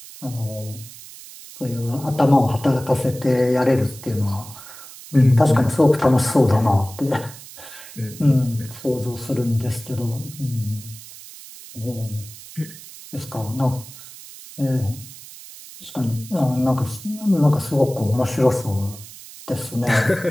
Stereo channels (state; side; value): noise; right; hiss, 17 dB below the sound